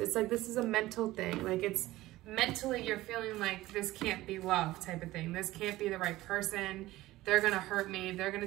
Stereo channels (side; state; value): left; quieter; 17.1 dB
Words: It's like this is a mental thing. Like it's mentally you're feeling like this can't be love, type of thing. This can't be the right person. They're gonna hurt me. They're